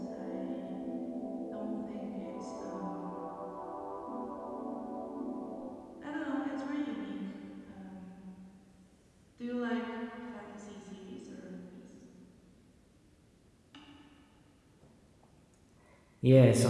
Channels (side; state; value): both; identical; correlation 1.00